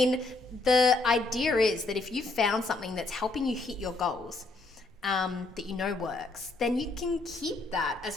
the idea is that if you've found something that's helping you hit your goals, that works, then you can keep that as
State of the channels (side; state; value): right; quieter; 3.3 dB